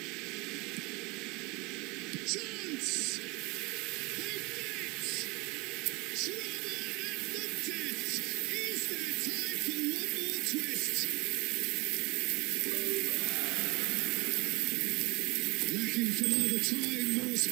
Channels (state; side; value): quieter; left; 25.9 dB